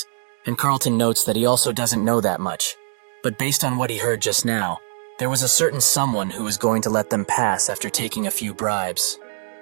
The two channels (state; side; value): silent; left; 64 dB below the other